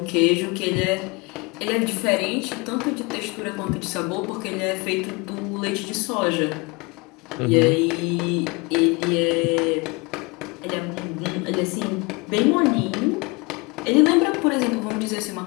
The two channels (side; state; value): right; quieter; 27.4 dB